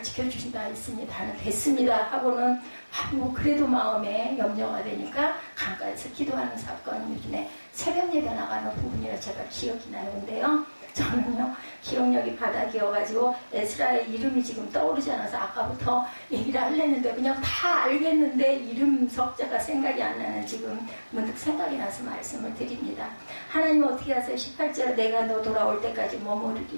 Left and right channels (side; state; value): both; inverted; correlation -1.00